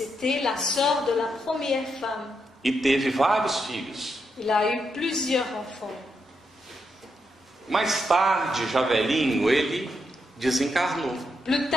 la sœur de la première femme. E teve vários filhos. Il a eu plusieurs enfants. Mais tarde, já velhinho, ele desencarnou. Plus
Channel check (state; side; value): normal; both; correlation 0.82